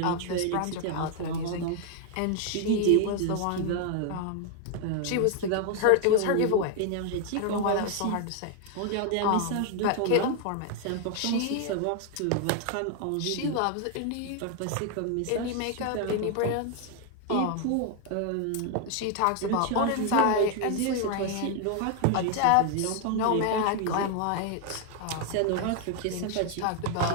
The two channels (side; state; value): both; different; correlation 0.00